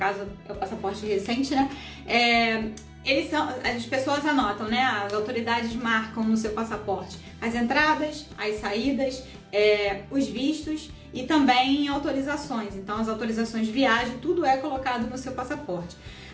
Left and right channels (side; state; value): both; identical; correlation 1.00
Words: é o passaporte recente, né? As pessoas anotam, né? As autoridades marcam no seu passaporte as entradas, as saídas, os vistos e também autorizações. Então, as autorizações de viagem, tudo é colocado no seu passaporte.